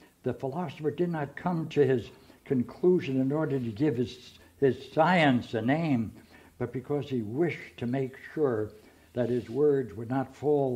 The philosopher did not come to his conclusion in order to give his science a name, but because he wished to make sure that his words would not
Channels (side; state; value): both; identical; correlation 1.00